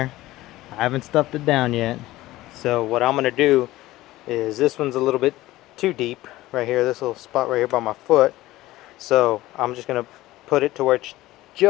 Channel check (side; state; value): right; quieter; 17.1 dB